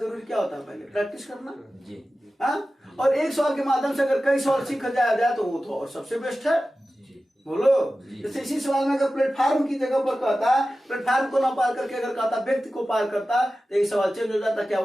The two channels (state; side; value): normal; both; correlation 0.95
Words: क्या होता है? पहले प्रैक्टिस करना जी। हाँ, और एक सवाल के माध्यम से अगर कई सवाल सीखा जाए तो वो तो और सबसे बेस्ट है। बोलो, जैसे इसी सवाल में अगर प्लेटफार्म की जगह पर कहता प्लेटफार्म को ना पार करके अगर कहता व्यक्ति को पार करता तो ये सवाल चेंज हो जाता। क्या